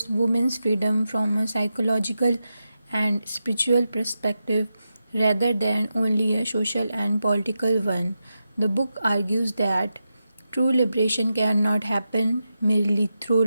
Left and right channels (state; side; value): inverted; both; correlation -0.88